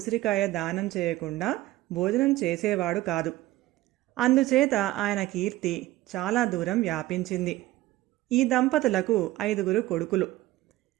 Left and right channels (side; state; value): left; quieter; 16.8 dB